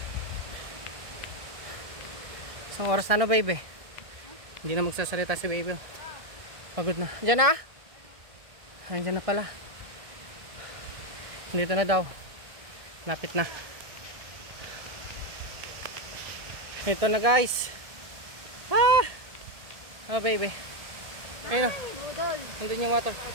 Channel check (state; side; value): late; left; 1.6 ms